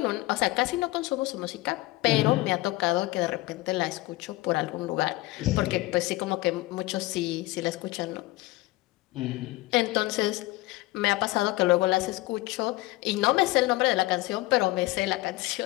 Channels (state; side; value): quieter; right; 19.4 dB